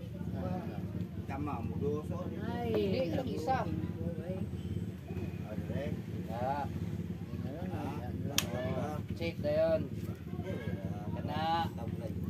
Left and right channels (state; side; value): identical; both; correlation 1.00